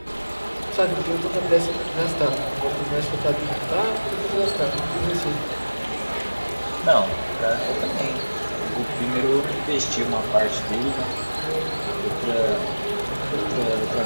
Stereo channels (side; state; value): both; inverted; correlation -1.00